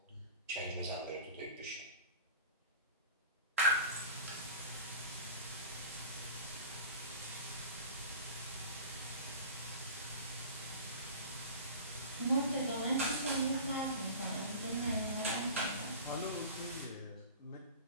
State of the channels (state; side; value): inverted; both; correlation -0.37